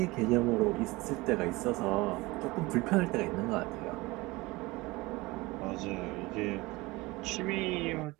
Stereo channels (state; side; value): quieter; left; 22.1 dB